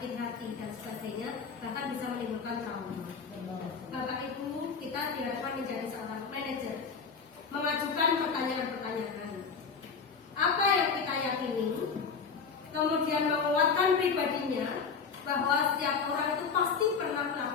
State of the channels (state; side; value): quieter; right; 5.6 dB